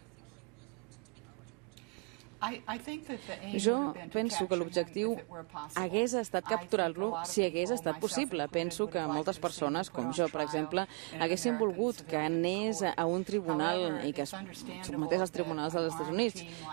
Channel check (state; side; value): quieter; left; 35.9 dB